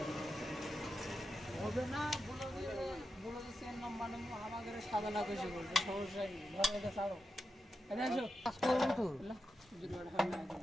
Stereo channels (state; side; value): normal; both; correlation 0.88